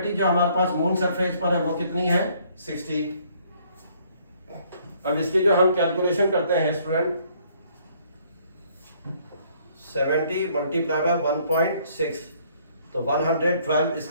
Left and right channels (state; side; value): inverted; both; correlation -0.64